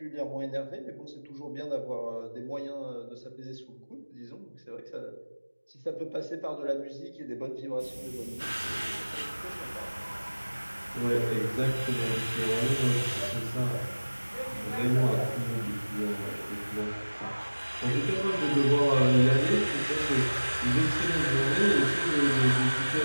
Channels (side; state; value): both; inverted; correlation -1.00